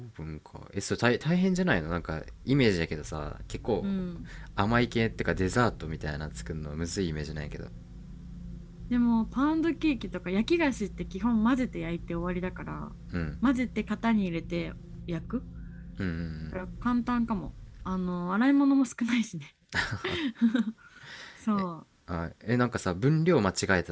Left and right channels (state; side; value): identical; both; correlation 1.00